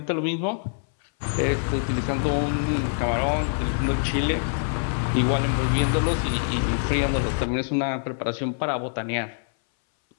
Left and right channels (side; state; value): right; silent; 60 dB below the other